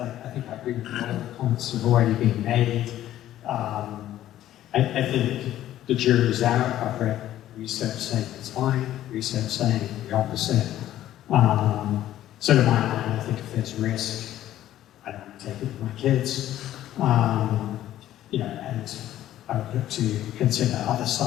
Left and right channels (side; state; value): right; quieter; 12.9 dB